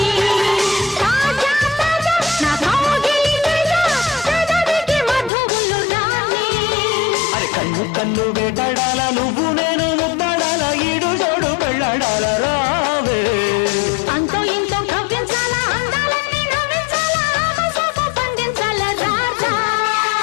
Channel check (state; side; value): drops out; right; at 5.3 s